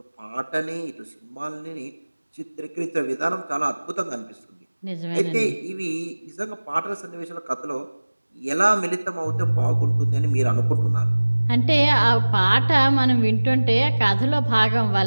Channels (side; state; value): both; inverted; correlation -1.00